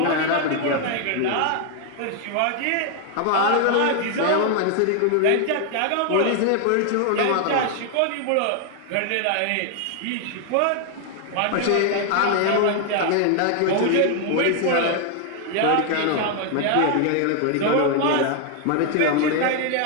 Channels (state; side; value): different; both; correlation 0.00